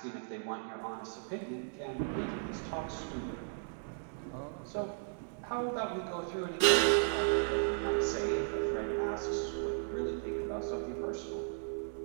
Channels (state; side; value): silent; left; digital silence